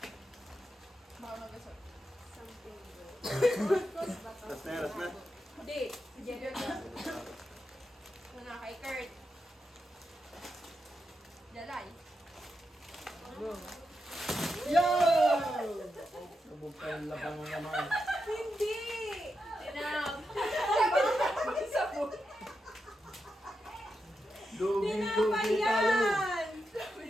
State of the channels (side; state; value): both; normal; correlation 0.87